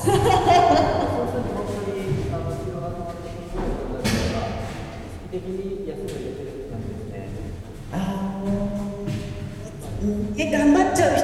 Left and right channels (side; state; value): both; identical; correlation 1.00